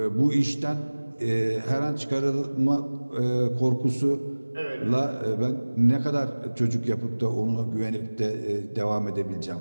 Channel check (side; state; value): both; inverted; correlation -1.00